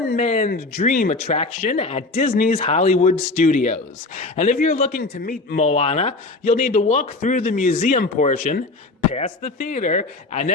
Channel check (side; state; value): right; quieter; 3.3 dB